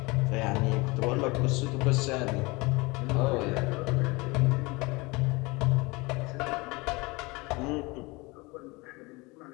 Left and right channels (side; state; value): right; quieter; 25.1 dB